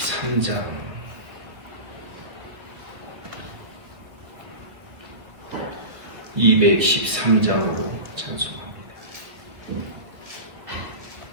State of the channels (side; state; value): left; late; 2.0 ms